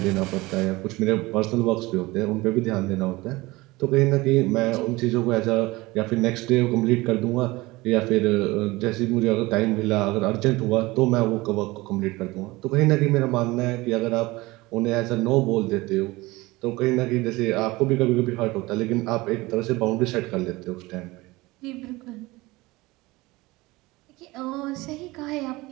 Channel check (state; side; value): quieter; left; 21.1 dB